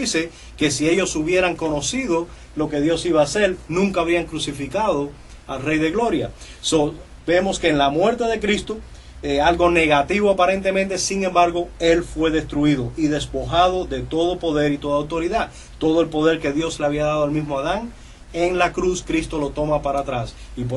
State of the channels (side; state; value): both; identical; correlation 1.00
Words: que si ellos hubieran conocido lo que Dios iba a hacer, nunca habrían crucificado al Rey de Gloria. Vemos que en la muerte de Cristo, algo negativo aparentemente, sin embargo, Él fue destruido y despojado de todo poder y toda autoridad. Todo el poder que Dios le había dado al mismo Adán, en la cruz Cristo lo toma para atrás. Y